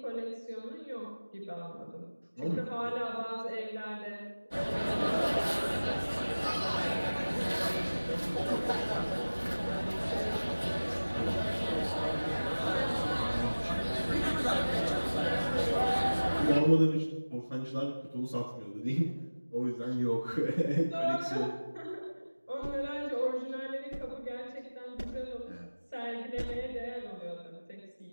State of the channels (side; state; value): both; inverted; correlation -1.00